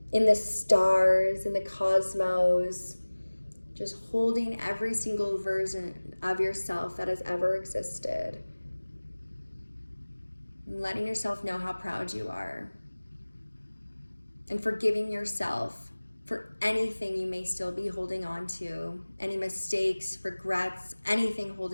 in the stars, in the cosmos, just holding every single version of yourself that has ever existed. And letting yourself know how proud you are. And forgiving yourself for anything you may still be holding on to, any mistakes, regrets, anything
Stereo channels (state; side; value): inverted; both; correlation -1.00